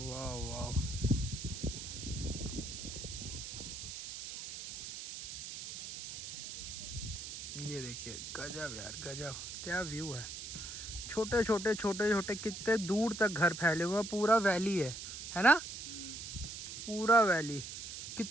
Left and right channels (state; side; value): noise; right; hiss, 8 dB below the sound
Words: वाह। ये देखिए गजब यार गजब, क्या व्यू है। छोटे छोटे छोटे छोटे कितने दूर तक घर फैले हुए हैं, पूरा वैली है ना, पूरा वैली।